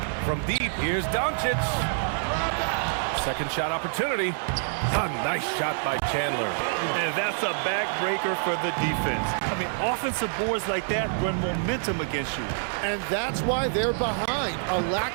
From deep, here's Doncic. Second shot opportunity. A nice shot by Chandler. And that's a backbreaker for the defense. I mean, offensive boards like that run momentum against you. And that's why they're behind. A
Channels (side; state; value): left; silent; digital silence